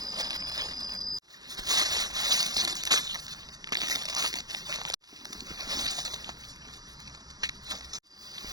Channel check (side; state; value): left; late; 0.19 ms